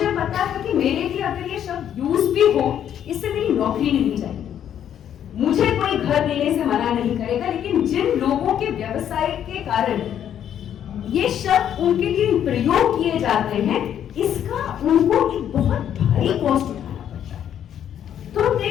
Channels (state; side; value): quieter; right; 9.8 dB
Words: पता है कि मेरे लिए अगर ये शब्द यूज भी हो, इससे मेरी नौकरी नहीं जाएगी। मुझे कोई घर देने से मना नहीं करेगा, लेकिन जिन लोगों के व्यवसाय के कारण ये शब्द उनके लिए प्रयोग किए जाते हैं, इसका उनको एक बहुत भारी कॉस्ट उठाना पड़ता है। तो हम